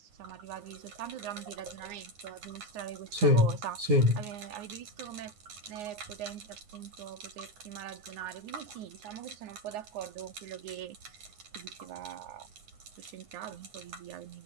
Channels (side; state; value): left; late; 9.6 ms